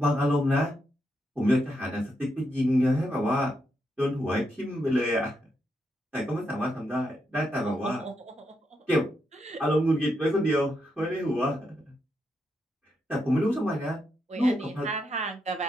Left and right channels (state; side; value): normal; both; correlation 0.82